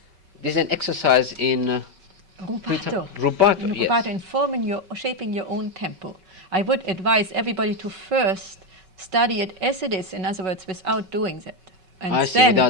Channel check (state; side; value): late; left; 5.3 ms